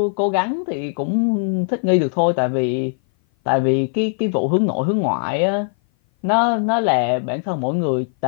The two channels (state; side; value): silent; right; 57 dB below the other